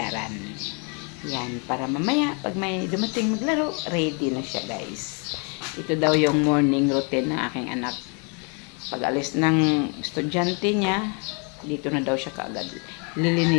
Yan, para mamaya pag may dumating maglaro, ready na siya guys. Ito daw yung morning routine ng aking anak. Pag alis ng estudyante niya, dito na daw siya kaagad.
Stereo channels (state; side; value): quieter; right; 35.8 dB